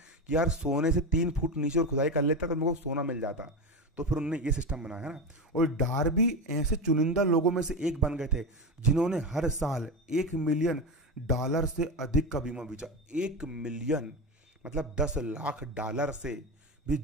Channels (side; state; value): both; normal; correlation 0.19